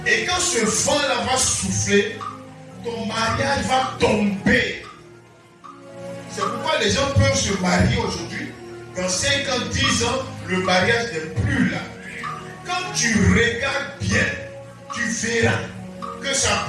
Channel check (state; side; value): identical; both; correlation 1.00